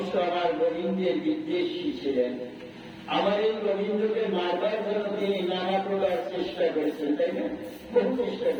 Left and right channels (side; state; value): both; identical; correlation 1.00